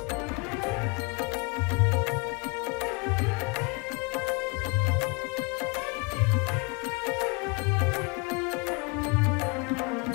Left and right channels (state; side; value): quieter; right; 29.9 dB